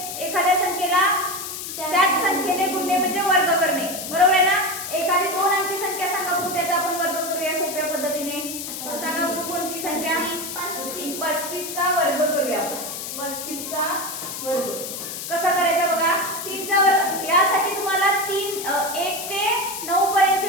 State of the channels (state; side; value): noise; left; hiss, 7 dB below the sound